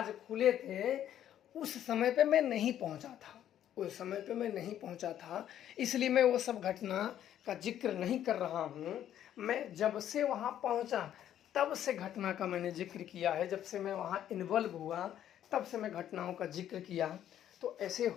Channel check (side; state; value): right; quieter; 10.9 dB